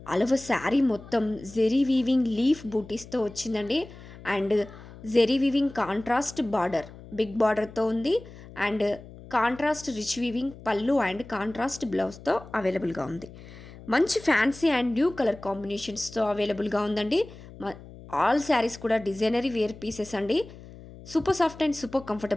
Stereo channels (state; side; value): noise; left; hum, 17 dB below the sound